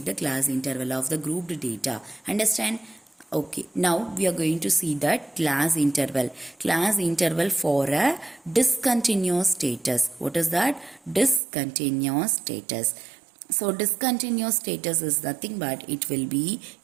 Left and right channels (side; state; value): left; drops out; at 11.4 s